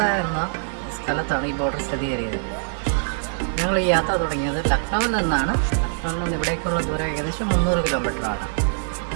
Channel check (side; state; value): left; silent; digital silence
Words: എന്ന സ്ഥലത്താണ് ഈ ബോർഡർ സ്ഥിതി ചെയ്യുന്നത്. ഞങ്ങൾ ഈ യാത്ര തുടങ്ങിയത് ലക്നൗവിൽ നിന്നാണ്. ലക്നൗവിൽ നിന്ന് ഇവിടേക്കുള്ള ദൂരം ഏകദേശം 300 കിലോമീറ്ററാണ്.